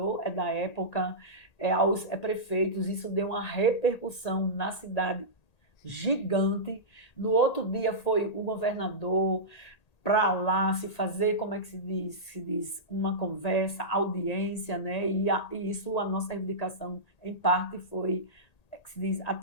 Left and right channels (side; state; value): right; late; 1.8 ms